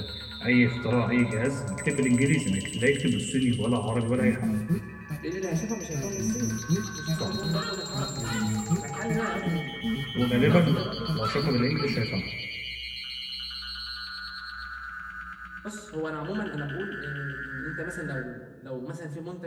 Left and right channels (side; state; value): both; identical; correlation 1.00